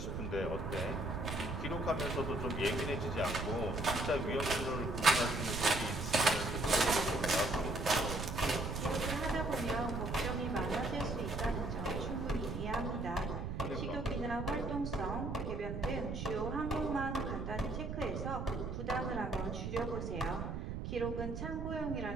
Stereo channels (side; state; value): right; noise; rumble, 4 dB below the sound